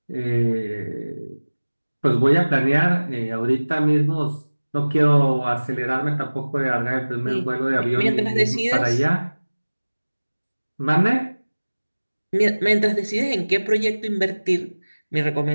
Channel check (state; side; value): inverted; both; correlation -1.00